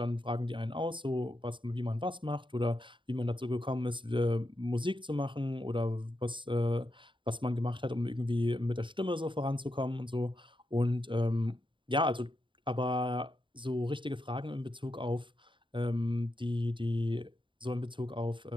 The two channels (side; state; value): left; late; 0.24 ms